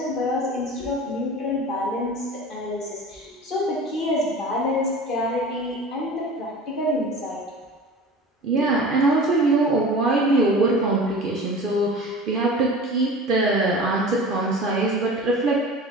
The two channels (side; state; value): both; normal; correlation 0.37